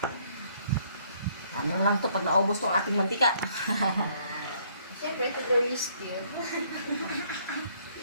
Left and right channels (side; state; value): both; inverted; correlation -0.65